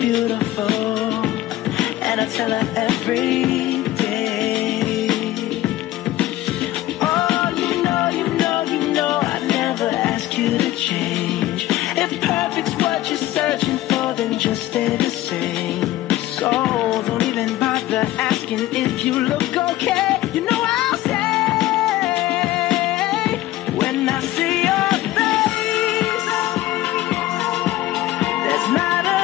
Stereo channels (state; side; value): quieter; right; 15.6 dB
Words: and I tell her every day. Oh, you know, I never ask you to change. If perfect's what you're searching for, then just stay the same. So don't even bother asking if you look okay. You know I'll say. When I see your face, there's not a